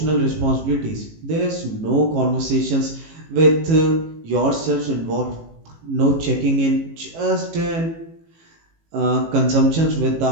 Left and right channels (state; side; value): late; left; 18 ms